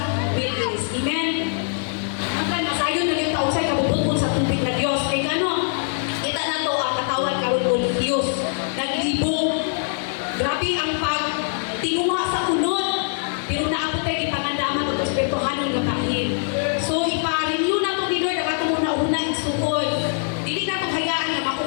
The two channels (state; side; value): silent; right; digital silence